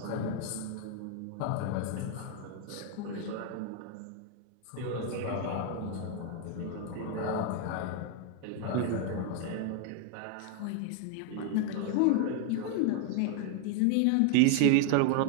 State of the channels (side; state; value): both; different; correlation 0.00